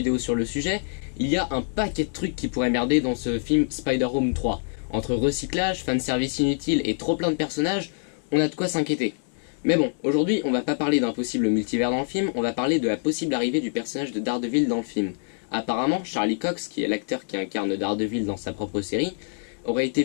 sur le sujet, il y a un paquet de trucs qui pourraient merder dans ce film Spider-Home 3. Entre recyclage, fanservice inutile et trop plein de personnages, on a de quoi s'inquiéter. Mais bon, aujourd'hui on va pas parler d'un possible multivers dans le film, on va parler de la possible arrivée du personnage de Daredevil dans le film. Apparemment, Charlie Cox, qui est l'acteur qui incarne Daredevil dans sa propre série, aurait été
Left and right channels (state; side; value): silent; right; 61 dB below the other